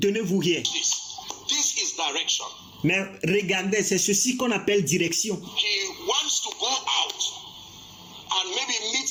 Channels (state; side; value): identical; both; correlation 1.00